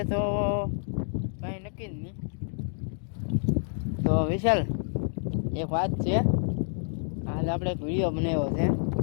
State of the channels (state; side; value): silent; right; digital silence